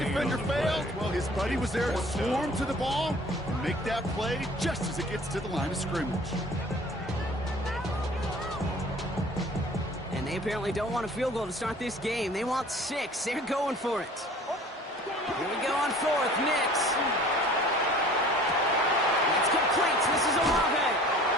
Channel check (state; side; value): normal; both; correlation 0.48